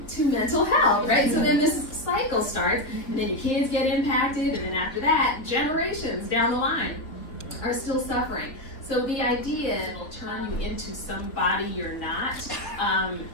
to mental health, right? So then this cycle starts, and then your kids get impacted, and then after that, generations down the line are still suffering. So the idea will turn you into somebody you're not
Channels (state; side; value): late; right; 3.4 ms